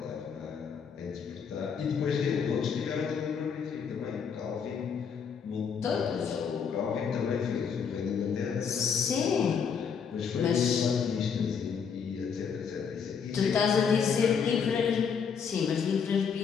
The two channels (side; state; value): right; quieter; 6.6 dB